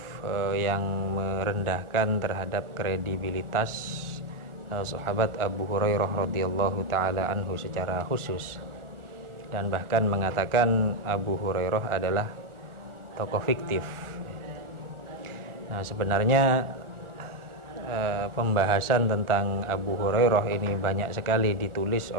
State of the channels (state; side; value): late; left; 1.4 ms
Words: yang merendahkan terhadap kredibilitas sahabat Abu Hurairah radhiyallahu taala anhu secara khusus, dan bahkan mengatakan Abu Hurairah adalah tokoh fiktif. Nah, sebenarnya pembahasan tentang Abu Hurairah ini banyak sekali ditulis